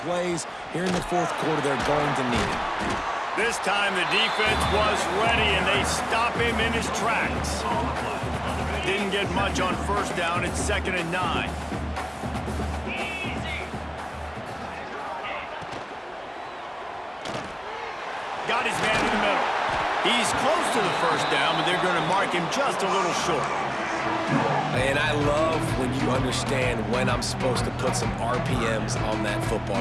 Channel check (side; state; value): both; identical; correlation 1.00